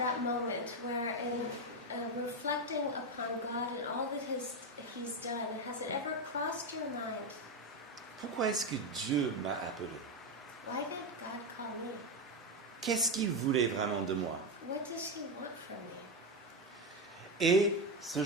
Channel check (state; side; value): normal; both; correlation 0.10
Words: moment where in reflecting upon God and all that He's done, has it ever crossed your mind? Pourquoi est-ce que Dieu m'a appelé? Why did God call me? Qu'est-ce qu'il voulait vraiment de moi? What does He want from me? Et ce